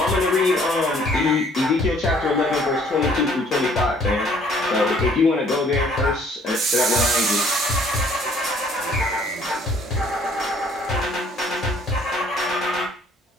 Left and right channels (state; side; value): normal; both; correlation 0.59